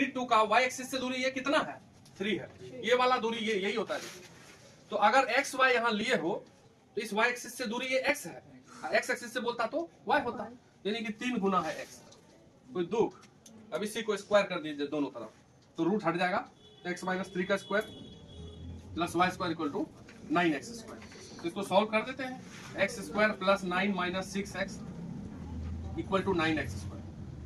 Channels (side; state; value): both; identical; correlation 1.00